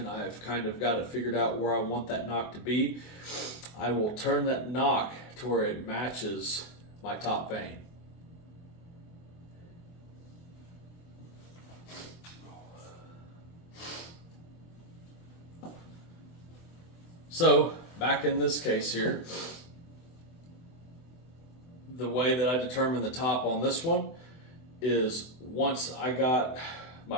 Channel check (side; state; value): right; late; 24 ms